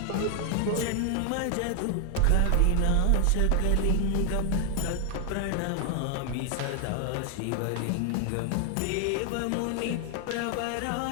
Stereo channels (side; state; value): both; different; correlation 0.00